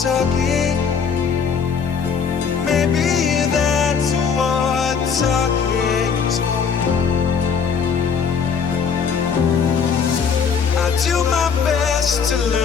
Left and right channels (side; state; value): right; quieter; 6.3 dB